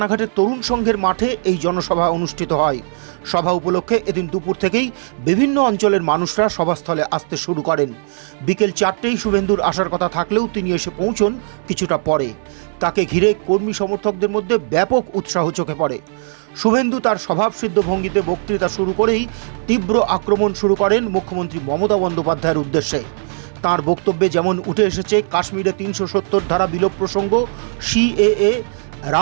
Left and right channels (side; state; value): left; silent; 65 dB below the other